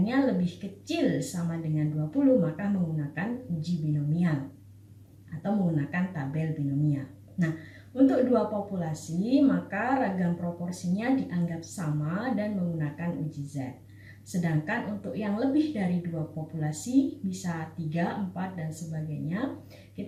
lebih kecil sama dengan 20, maka menggunakan uji binomial atau menggunakan tabel binomial. Nah, untuk 2 populasi, maka ragam proporsinya dianggap sama dan menggunakan uji Z. Sedangkan untuk yang lebih dari 2 populasi, bisa 3, 4, dan sebagainya,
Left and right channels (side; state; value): both; identical; correlation 1.00